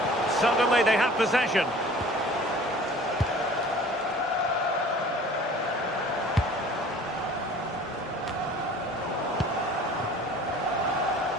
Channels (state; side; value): normal; both; correlation 0.47